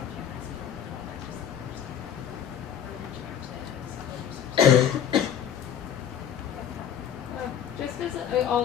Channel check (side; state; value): right; quieter; 9.0 dB